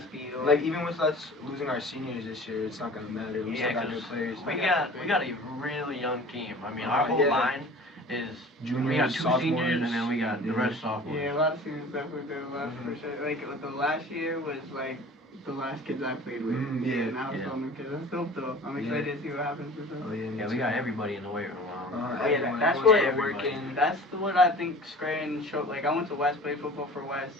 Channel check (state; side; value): normal; both; correlation 0.43